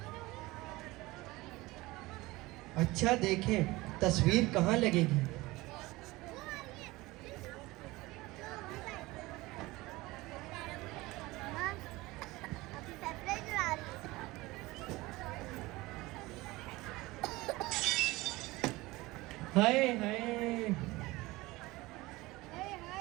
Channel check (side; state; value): left; quieter; 20.5 dB